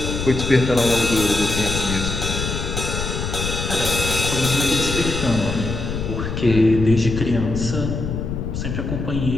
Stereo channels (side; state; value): left; noise; rumble, 4 dB below the sound